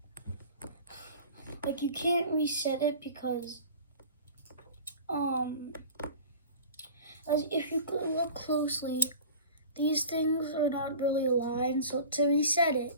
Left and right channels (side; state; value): both; inverted; correlation -0.40